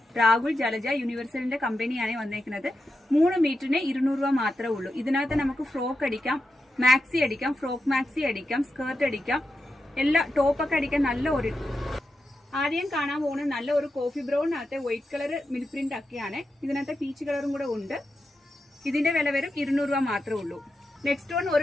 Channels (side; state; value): both; normal; correlation 0.88